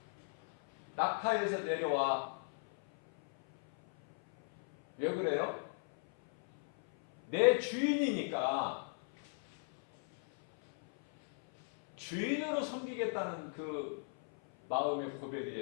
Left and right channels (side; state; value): right; silent; 54 dB below the other